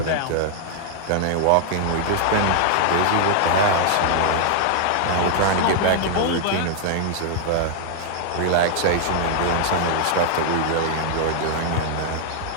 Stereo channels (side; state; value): both; different; correlation 0.00